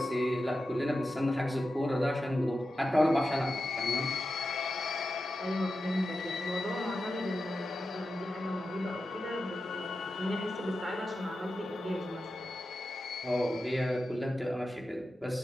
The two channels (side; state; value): both; normal; correlation 0.91